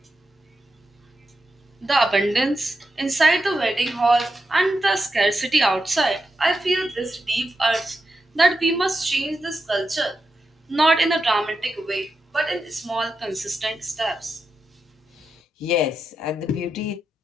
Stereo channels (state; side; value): normal; both; correlation 0.87